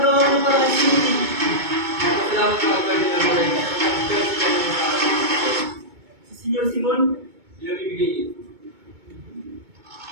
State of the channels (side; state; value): left; late; 2.2 ms